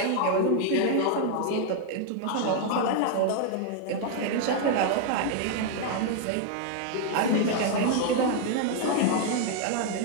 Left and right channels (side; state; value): both; different; correlation 0.00